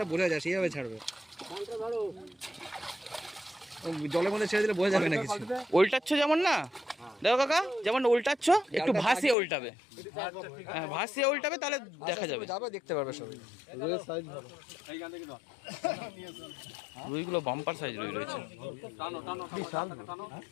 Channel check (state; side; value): drops out; right; at 9.3 s